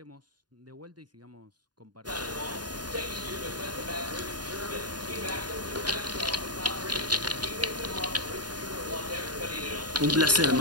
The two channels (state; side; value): late; left; 0.70 ms